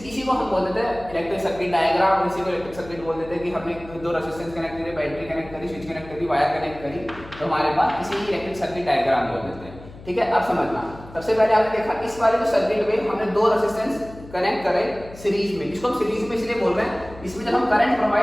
को हम बोल देते हैं इलेक्ट्रिक सर्किट डायग्राम, और इसी को इलेक्ट्रिक सर्किट बोल देते हैं कि हमने दो रेजिस्टेंस कनेक्ट करे, बैटरी कनेक्ट करी, स्विच कनेक्ट करी, वायर कनेक्ट करी, तो हमारे पास इसी इलेक्ट्रिक सर्किट डायग्राम बोल देते हैं, ठीक है। अब समझना, सबसे पहले आपने देखा इस वाले जो सर्किट में हमने दो रेजिस्टेंस कनेक्ट करे सीरीज में, इसको हम सीरीज में इसलिए बोल रहे हैं, इसमें जब हम करंट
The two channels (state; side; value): noise; left; hum, 18 dB below the sound